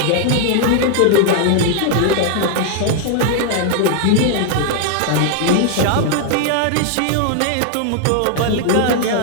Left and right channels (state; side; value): different; both; correlation 0.00